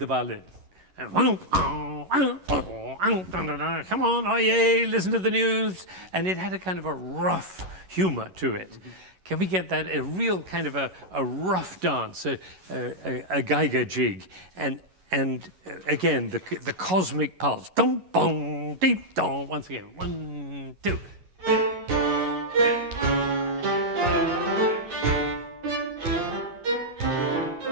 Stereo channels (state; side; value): late; left; 11 ms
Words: violin. And come on, oh yay, listen to the news. And it had a kind of a rough humor to it. Can we get that, a real kind of a rough dance, a Geiger jig, and again, the cosmic pulse. Dum, bum, deep, dum. Once again, 1, 2.